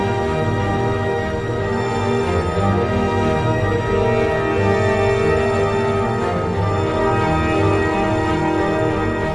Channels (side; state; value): both; identical; correlation 1.00